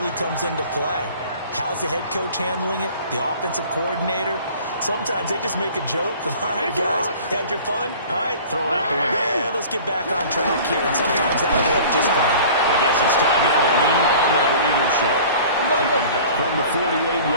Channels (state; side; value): inverted; both; correlation -0.44